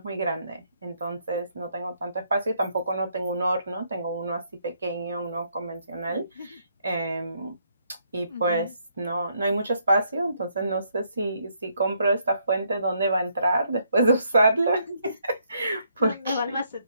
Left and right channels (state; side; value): inverted; both; correlation -0.72